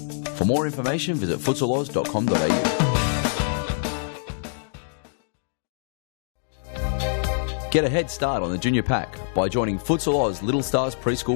For more information, visit futsaloz.com.au. Get a head start on the junior pack by joining Futsal Oz Little Stars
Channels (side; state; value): right; silent; digital silence